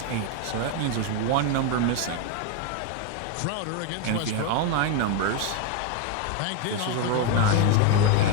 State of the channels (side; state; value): both; different; correlation 0.02